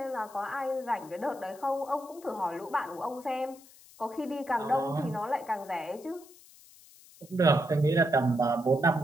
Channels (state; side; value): noise; left; hiss, 23 dB below the sound